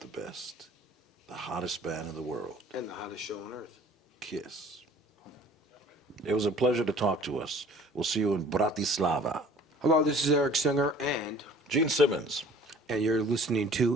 best. The hottest band in the world. And the hottest show on earth. KISS. It was a pleasure to talk to us. We'll see you in Bratislava. Hello, this is Eric Singer and Gene Simmons. you're listening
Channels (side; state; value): both; normal; correlation 0.50